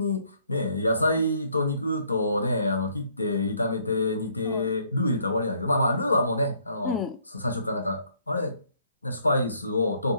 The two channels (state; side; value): inverted; both; correlation -0.66